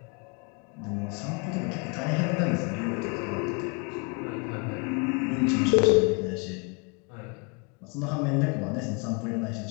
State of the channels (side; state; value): right; quieter; 32.5 dB